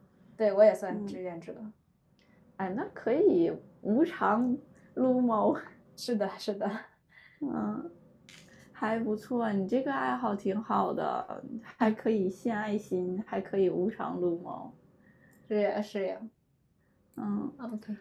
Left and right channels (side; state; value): both; identical; correlation 1.00